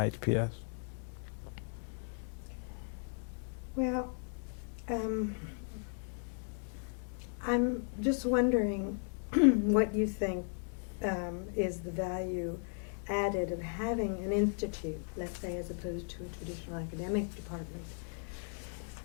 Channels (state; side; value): silent; right; 54 dB below the other